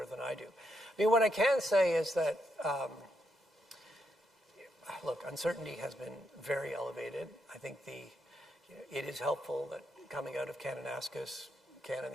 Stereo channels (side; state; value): both; normal; correlation 0.80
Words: than I do. I mean, what I can say is that, look, uncertainty has been very elevated. I think it is helpful that coming out of Kananaskis, Canada and